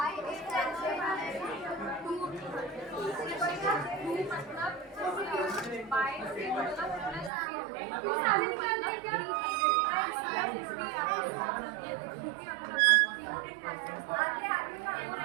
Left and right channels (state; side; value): drops out; left; at 7.3 s